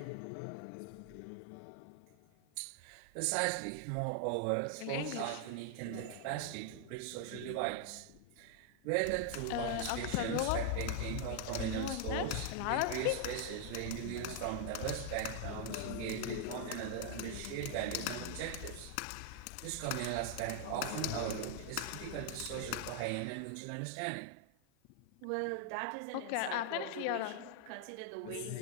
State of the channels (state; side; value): different; both; correlation 0.00